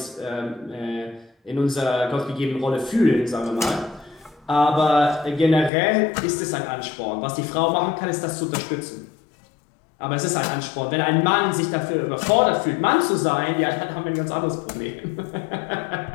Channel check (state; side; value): drops out; right; at 5.7 s